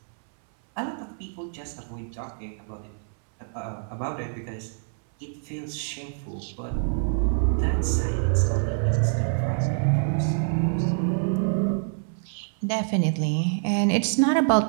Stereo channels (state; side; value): silent; left; 61 dB below the other